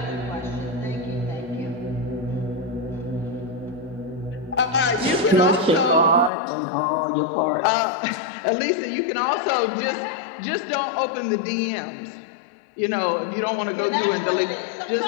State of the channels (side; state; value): right; drops out; at 6.3 s